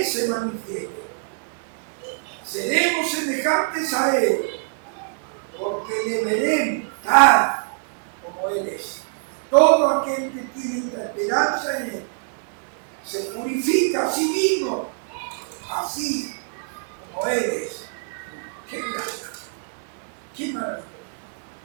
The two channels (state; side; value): silent; left; digital silence